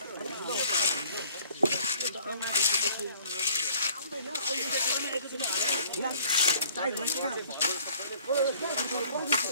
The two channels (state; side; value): inverted; both; correlation -0.54